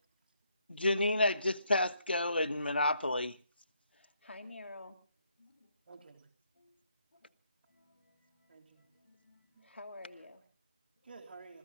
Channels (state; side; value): inverted; both; correlation -0.73